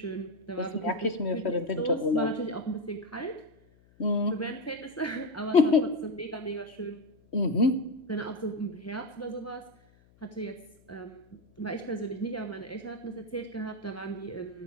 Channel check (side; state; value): left; noise; hum, 29 dB below the sound